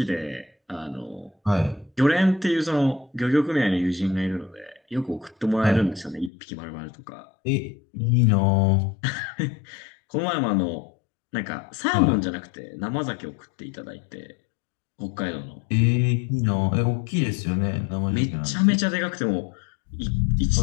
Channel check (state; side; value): drops out; right; at 6.3 s